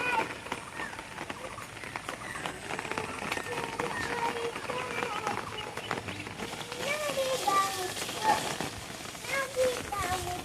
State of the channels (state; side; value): identical; both; correlation 1.00